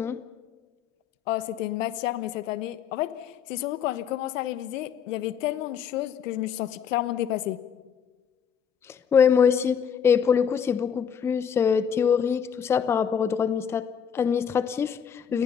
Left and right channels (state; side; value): quieter; right; 7.6 dB